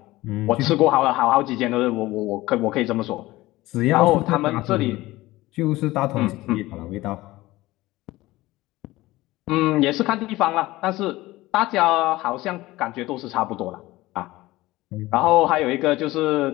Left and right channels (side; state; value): right; quieter; 18.4 dB